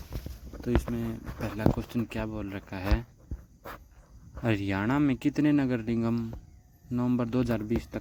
तो इसमें पहला क्वेश्चन क्या बोल रखा है, हरियाणा में कितने नगर निगम नवंबर 2020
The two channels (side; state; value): both; identical; correlation 1.00